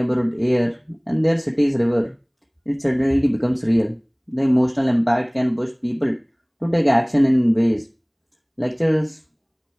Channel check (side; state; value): both; identical; correlation 1.00